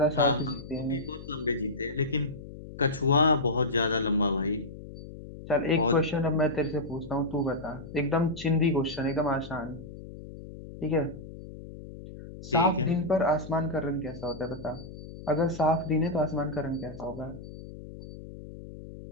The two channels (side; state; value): left; noise; hum, 14 dB below the sound